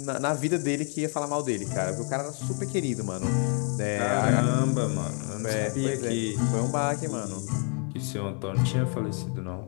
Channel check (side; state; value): right; quieter; 39.8 dB